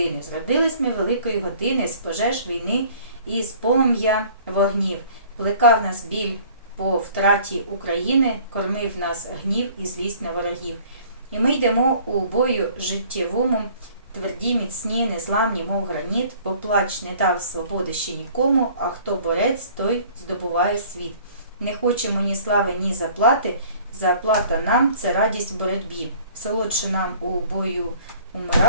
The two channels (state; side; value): inverted; both; correlation -0.52